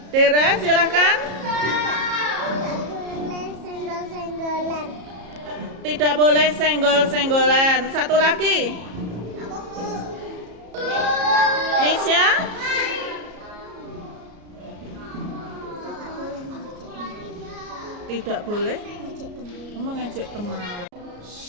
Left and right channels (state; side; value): late; left; 34 ms